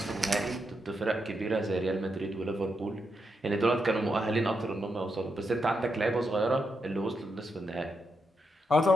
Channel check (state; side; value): normal; both; correlation 0.83